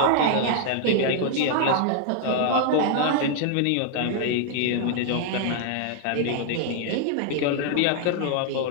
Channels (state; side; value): different; both; correlation 0.00